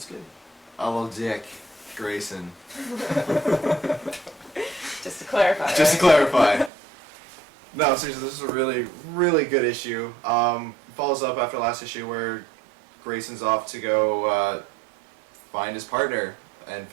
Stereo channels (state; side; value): drops out; left; at 6.7 s